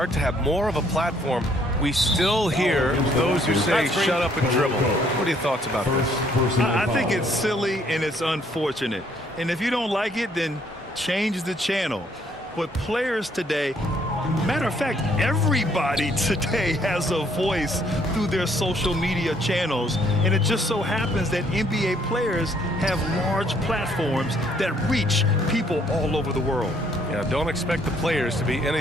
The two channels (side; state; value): both; normal; correlation 0.66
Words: to have more of a platform, we still hear those who say shut up and dribble. What are your thoughts about this? I think it's silly and it's unfortunate. And if you don't like it, then change the channel. But players today, matter of fact, everybody today has a voice through their social media channels. And it just so happens that NBA players have large platforms that reach people all over the world. Yeah, don't expect the players to be